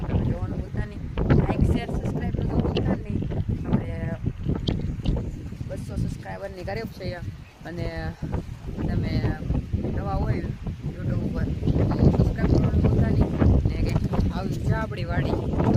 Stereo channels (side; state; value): both; identical; correlation 1.00